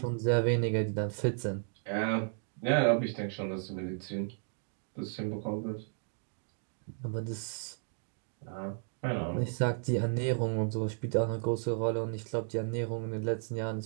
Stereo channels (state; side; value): silent; left; digital silence